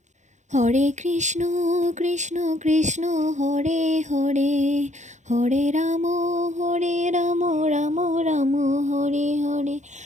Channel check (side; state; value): left; late; 0.34 ms